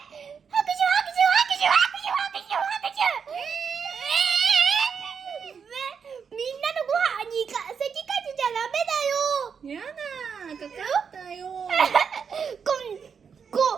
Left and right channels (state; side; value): quieter; left; 6.5 dB